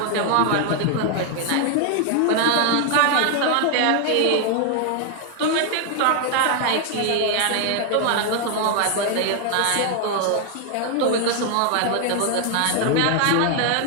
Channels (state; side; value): different; both; correlation 0.00